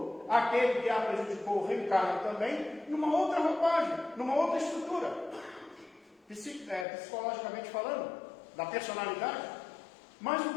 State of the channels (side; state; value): right; drops out; at 6.9 s